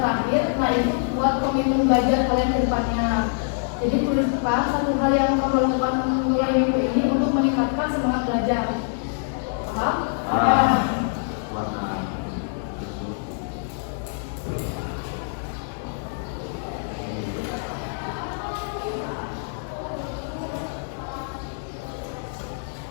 belajar kalian ke depannya. Jadi tuliskan satu hal yang kamu lakukan mulai minggu ini untuk meningkatkan semangat belajar. Paham?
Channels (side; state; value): right; silent; digital silence